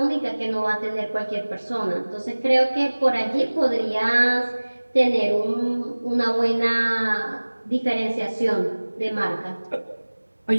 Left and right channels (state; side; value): inverted; both; correlation -1.00